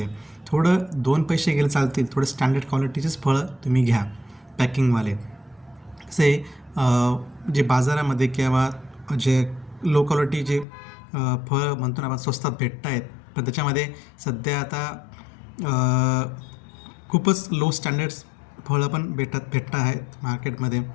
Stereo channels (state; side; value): drops out; right; at 10.7 s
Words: थोडं 2 पैसे गेले चालतील, थोडं स्टँडर्ड क्वालिटीचेच फळं तुम्ही घ्या पॅकिंगवाले. असे जे बाजारामध्ये किंवा जे लो क्वालिटी जे फळं म्हणतो ना आपण स्वस्तात भेटत आहेत, पण त्याच्यामध्ये सध्या आता खूपच लो स्टँडर्ड्स फळं पण भेटत आहेत मार्केटमध्ये.